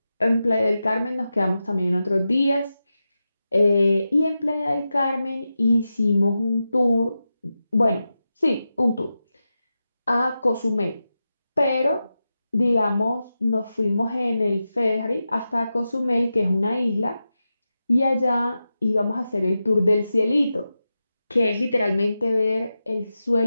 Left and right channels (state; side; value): inverted; both; correlation -0.91